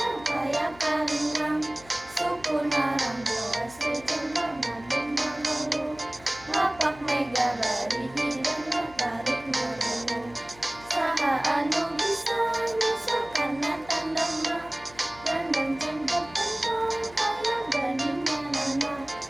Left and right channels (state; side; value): noise; left; hum, 22 dB below the sound